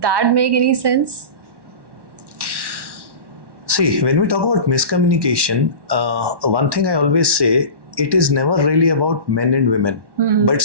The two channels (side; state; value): left; late; 1.1 ms